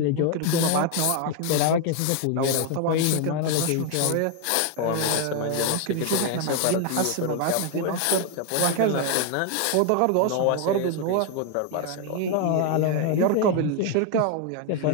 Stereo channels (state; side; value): different; both; correlation 0.01